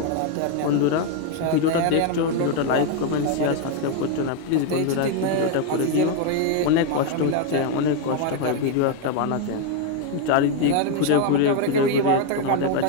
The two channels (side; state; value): both; different; correlation 0.01